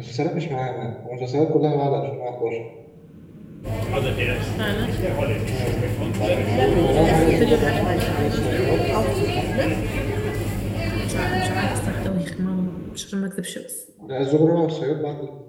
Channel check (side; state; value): both; identical; correlation 1.00